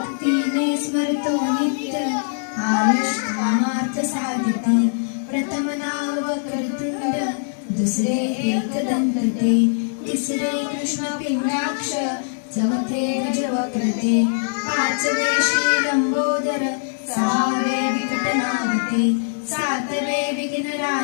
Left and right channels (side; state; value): right; silent; digital silence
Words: स्मरतो नित्य आयुष कामार्थ साधिते प्रथम नाव वक्रतुंड दुसरे एकदंत ते तिसरे कृष्ण पिंडाक्ष चौथे गजवक्रते पाचवे श्री लंबोदर सहावे विकटनागते सातवे विघ्न